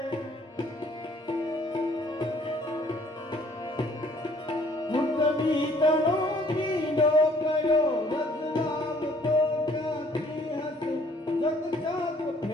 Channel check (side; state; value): both; normal; correlation 0.59